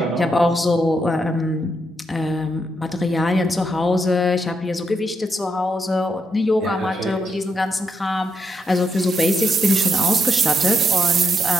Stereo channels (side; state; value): both; normal; correlation 0.80